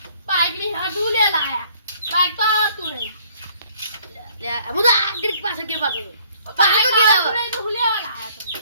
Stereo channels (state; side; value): inverted; both; correlation -0.60